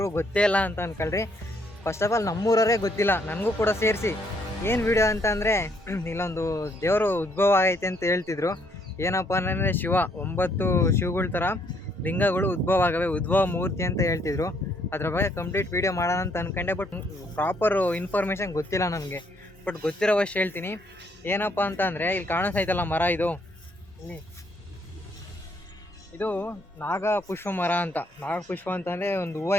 ಗೊತ್ತೇ ಇಲ್ಲ ಅಂತ ಅನ್ಕೊಳ್ರಿ. ಫಸ್ಟ್ ಆಫ್ ಆಲ್ ನಮ್ಮೂರವರೇ ಗೊತ್ತಿಲ್ಲ, ನನಗೂ ಕೂಡ ಸೇರಿಸಿ. ಏನು ವಿಡಿಯೋ ಅಂತಂದರೆ ಇಲ್ಲೊಂದು ದೇವರು ಉದ್ಭವ ಆಗೈತೆ ಅಂತ ಹೇಳ್ತಿದ್ರು. ಏನಪ್ಪ ಅಂತಂದರೆ 9 ಶಿವಗಳ ಥರ ಲಿಂಗಗಳು ಉದ್ಭವ ಆಗವೆ, ಉದ್ಭವ ಮೂರ್ತಿ ಅಂತ ಹೇಳ್ತಿದ್ರು. ಅದ್ರ ಬಗ್ಗೆ ಕಂಪ್ಲೀಟ್ ವಿಡಿಯೋ ಮಾಡೋಣ ಅಂತ ಅಂದ್ಕೊಂಡೆ, ಬಟ್ ಪ್ರಾಪರ್ ಇನ್ಫಾರ್ಮೇಷನ್ ಗೊತ್ತಿಲ್ಲ ನನಗೆ. ಬಟ್ ಗೊತ್ತಿರೋವಷ್ಟು ಹೇಳ್ತೀನಿ. ಏನಪ್ಪ ಅಂತ ಅಂದರೆ ಇಲ್ಲಿ ಕಾಣಿಸ್ತೈತಲ್ಲ ಮರ, ಇದು ನಾಗಪುಷ್ಪ ಮರ ಅಂತ. ನಾಗಪುಷ್ಪ ಅಂತಂದರೆ ಒಂದು ಹೂವು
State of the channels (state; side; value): normal; both; correlation 0.69